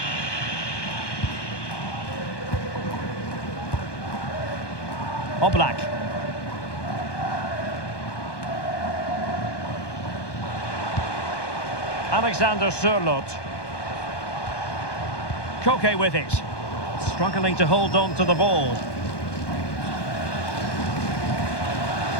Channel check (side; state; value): right; late; 1.2 ms